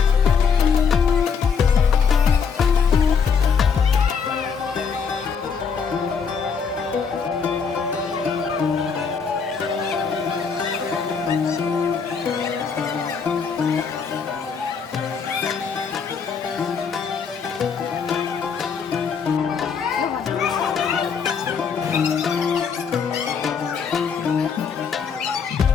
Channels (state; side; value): quieter; right; 6.1 dB